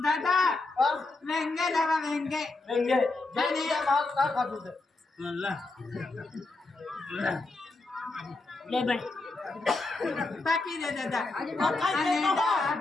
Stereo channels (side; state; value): right; quieter; 3.3 dB